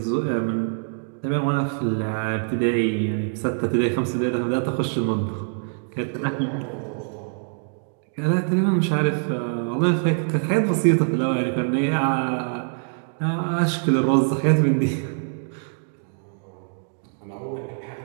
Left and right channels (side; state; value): left; silent; 62 dB below the other